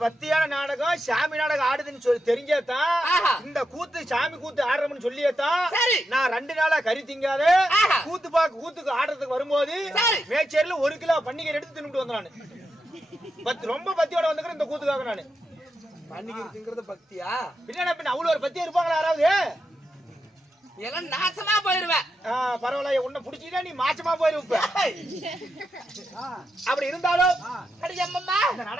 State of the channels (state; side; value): normal; both; correlation 0.86